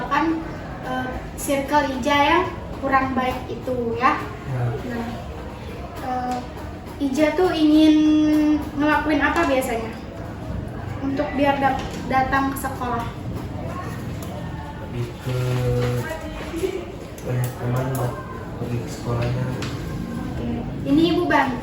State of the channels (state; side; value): identical; both; correlation 1.00